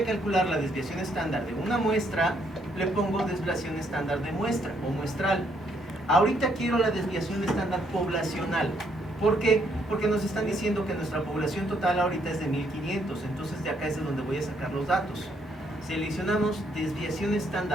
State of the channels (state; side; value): normal; both; correlation 0.72